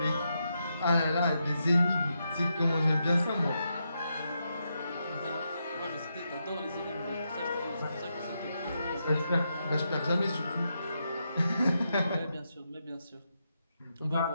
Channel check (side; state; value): both; inverted; correlation -0.83